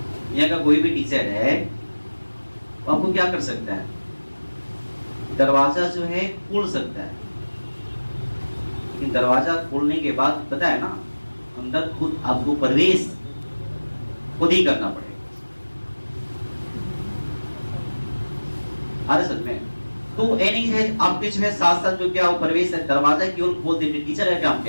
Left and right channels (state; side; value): inverted; both; correlation -1.00